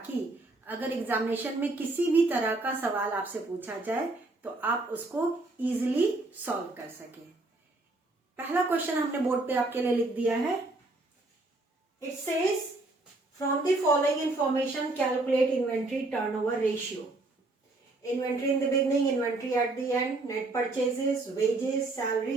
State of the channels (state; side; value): quieter; left; 3.0 dB